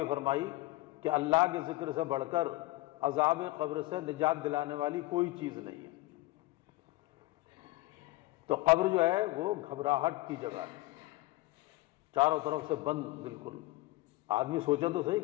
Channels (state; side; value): quieter; right; 19.7 dB